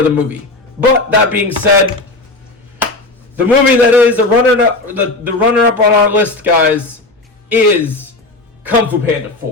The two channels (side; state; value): right; quieter; 3.0 dB